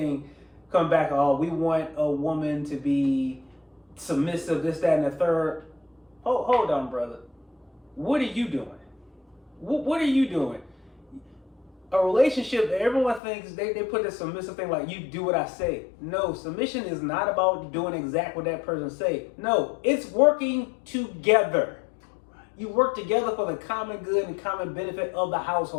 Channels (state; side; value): drops out; right; at 13.2 s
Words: come back. Oh, we want a woman to be submissive, this, that, and the third. Hold on, brother. What are you doing? What are you doing? A relationship, everyone thinks they put this submissive thing like you do what I say. No, submission is not about doing exactly what that person say. No, it's working together. You work together for the common good and common benefit of the